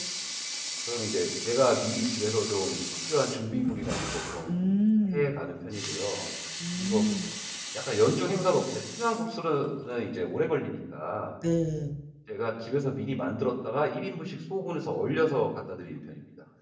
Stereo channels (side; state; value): both; identical; correlation 1.00